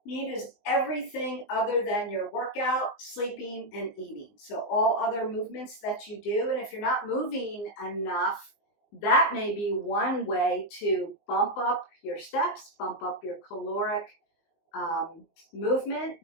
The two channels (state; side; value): late; right; 19 ms